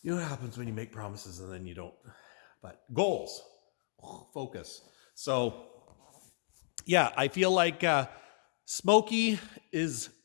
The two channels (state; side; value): silent; right; digital silence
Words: what happens when you make promises and then you don't. But goals, focus. So yeah, I feel like Smokey is